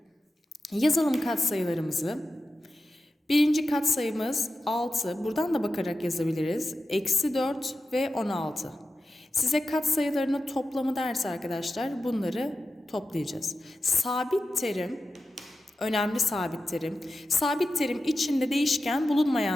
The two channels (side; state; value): both; normal; correlation 0.92